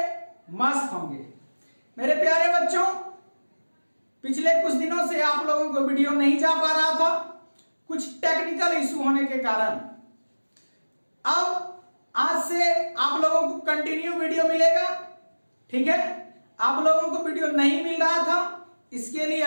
मस्त होंगे। मेरे प्यारे बच्चों, पिछले कुछ दिनों से आप लोगों को वीडियो नहीं जा पा रहा था, कुछ टेक्निकल इशू होने के कारण। अब आज से आप लोगों को कंटिन्यू वीडियो मिलेगा, ठीक है। आप लोगों को वीडियो नहीं मिल रहा था, इसके लिए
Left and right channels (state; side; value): inverted; both; correlation -1.00